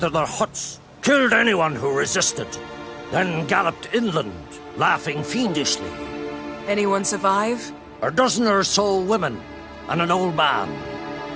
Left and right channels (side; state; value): both; identical; correlation 1.00